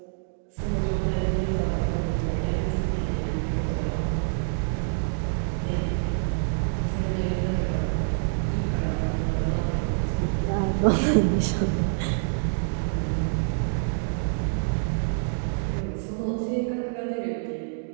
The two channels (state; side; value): silent; left; digital silence